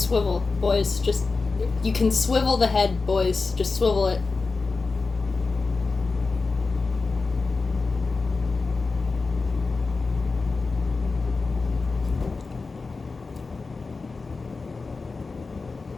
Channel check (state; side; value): quieter; right; 4.1 dB